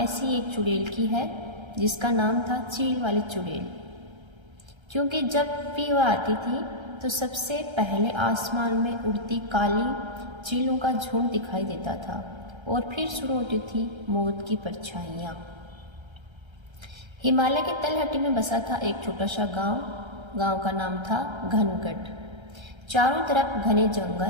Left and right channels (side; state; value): left; late; 1.3 ms